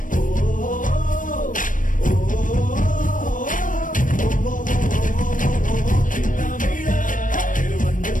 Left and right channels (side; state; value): right; late; 0.38 ms